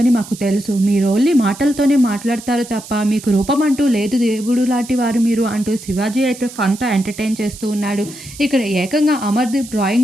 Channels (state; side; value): noise; right; hiss, 16 dB below the sound